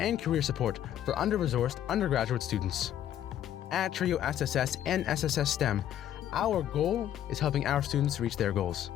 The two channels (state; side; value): quieter; right; 11.1 dB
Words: career support for under-resourced undergraduate students. At TRIO SSS and SSS STEM, our goal is helping our students reach their goals.